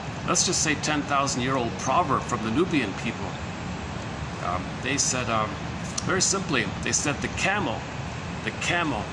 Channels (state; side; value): identical; both; correlation 1.00